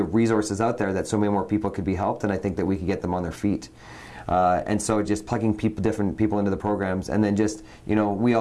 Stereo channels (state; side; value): identical; both; correlation 1.00